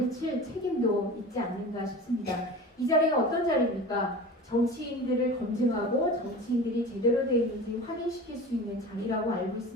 책임도 있지 않는가 싶습니다. 이 자리가 어떤 자리입니까? 정치인들을 검증하고 정치인들이 제대로 되어 있는지 확인시킬 수 있는 자리라고 알고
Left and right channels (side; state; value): both; normal; correlation 0.35